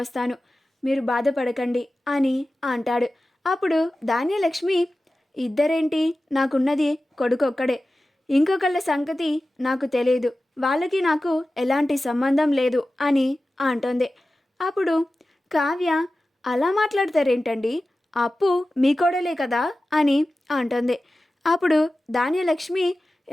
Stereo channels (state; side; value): normal; both; correlation 0.95